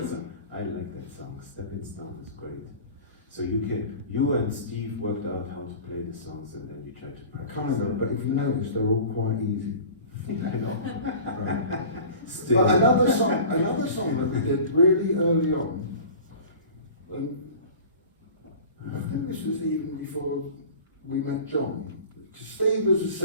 that song. I like that song. Stepping Stone is great. So you and Steve worked out how to play the songs, and then you tried to practice. Kind of, but if you notice, they're all quite easy. I know. Right. Still. But another song that we did really early on, and I think this was even before we met John, because Steve was a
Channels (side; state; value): both; inverted; correlation -0.40